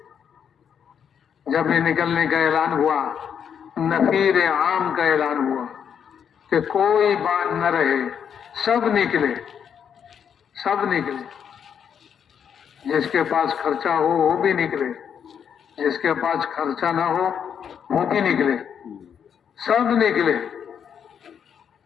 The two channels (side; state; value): right; quieter; 7.9 dB